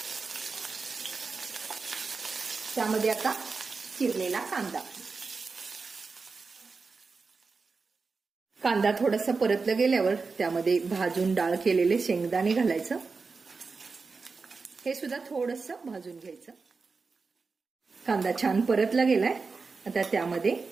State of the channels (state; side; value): quieter; left; 4.5 dB